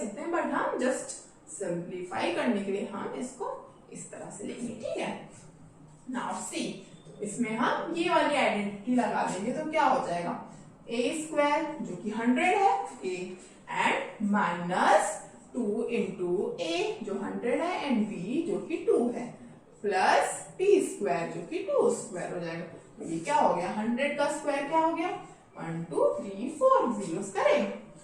हैं, बट हम जस्ट सिंप्लीफाई करने के लिए हम इसको इस तरह से लेंगे, ठीक है। नाउ सी, इसमें हम ये वाली आइडेंटिटी लगा देंगे तो क्या हो जाएगा a² जो कि 100 है a एंड -2 * a जो 100 है एंड b जो कि 2 है प्लस b² जो कि 2² हो जाएगा। तो ये क्या हो गया 100 का स्क्वायर क्या हो गया 1 2 3 4 जीरोस करें,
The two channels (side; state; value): both; identical; correlation 1.00